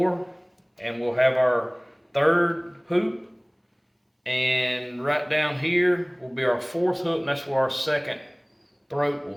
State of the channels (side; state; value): both; identical; correlation 1.00